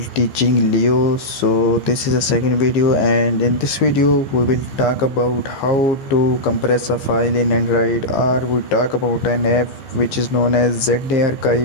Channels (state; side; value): late; right; 15 ms